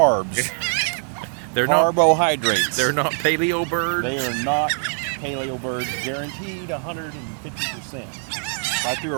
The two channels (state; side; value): silent; left; 56 dB below the other